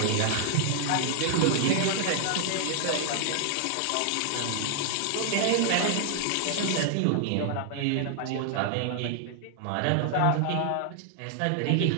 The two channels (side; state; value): both; different; correlation 0.00